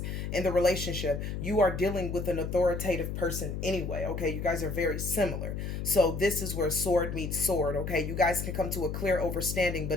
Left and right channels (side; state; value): left; noise; hum, 4 dB below the sound